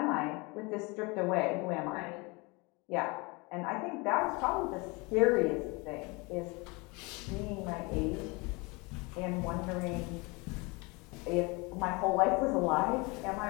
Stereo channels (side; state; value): right; quieter; 27.0 dB